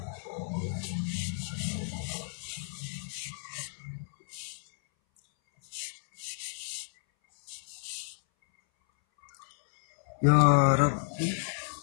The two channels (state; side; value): silent; right; 57 dB below the other